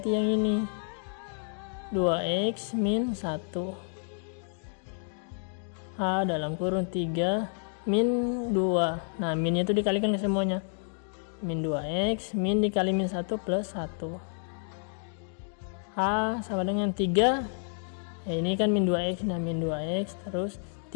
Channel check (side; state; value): right; silent; 58 dB below the other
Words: yang ini, 2x min 1 h dalam kurung 3 min 2. Nah min itu dikalikan ke semuanya, min 2x min dikali min 1 plus 1. H sama dengan 3. Ini kan min 2x, nah min 2x terus